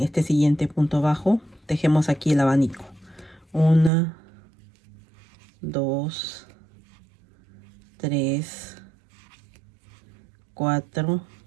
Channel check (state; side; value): drops out; left; at 3.9 s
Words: este siguiente punto bajo, tejemos aquí el abanico. 1, 2, 3, 4